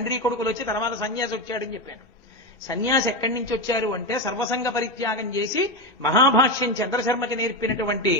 కొడుకులు వచ్చి తర్వాత సన్యాసి వచ్చాడని చెప్పాను. సన్యాసి ఎక్కడి నుంచి వచ్చారు అంటే సర్వసంగ పరిత్యాగం చేసి మహాభాష్యం చంద్రశర్మకి నేర్పినటువంటి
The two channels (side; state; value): both; normal; correlation 0.13